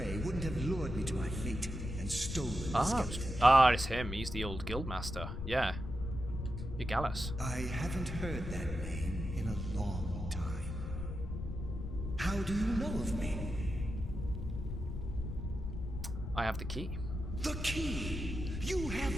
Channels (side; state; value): left; noise; rumble, 5 dB below the sound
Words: wouldn't have lured me to my fate and stolen the skeleton. It's him. He's the old guildmaster. Yeah. You're Gallus. I haven't heard that name in a long time. How do you know of me? I have the key. The key! You